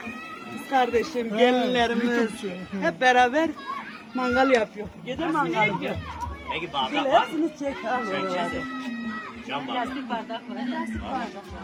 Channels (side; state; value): both; identical; correlation 1.00